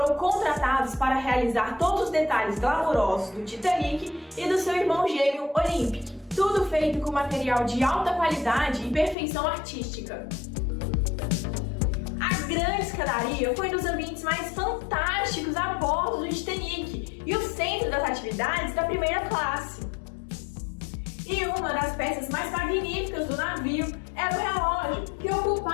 contratados para realizar todos os detalhes glamourosos do Titanic e do seu irmão gêmeo Olympic. Tudo feito com material de alta qualidade e perfeição artística. A grande escadaria foi um dos ambientes mais fantásticos a bordo do Titanic e o centro das atividades da primeira classe. E uma das peças mais magníficas do navio era o relógio, que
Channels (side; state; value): right; drops out; at 9.2 s